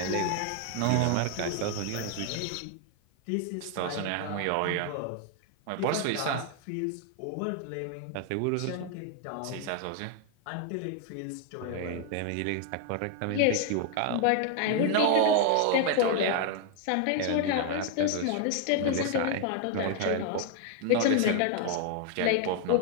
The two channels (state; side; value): different; both; correlation 0.00